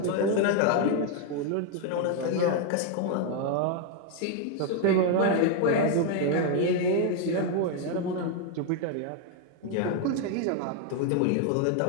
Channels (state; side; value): different; both; correlation 0.01